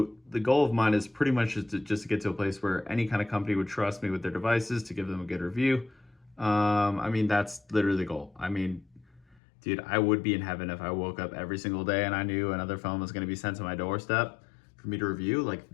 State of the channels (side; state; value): right; drops out; at 9.4 s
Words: goal of mine is pretty much just to get to a place where any kind of company would trust me with their devices to give them a good review. I mean, that's literally the goal. I mean, dude, I would be in heaven if I woke up every single day and I knew another phone was going to be sent to my doorstep for me to review. Like